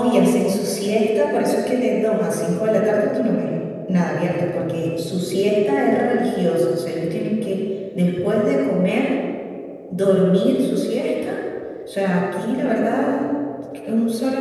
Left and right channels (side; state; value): both; identical; correlation 1.00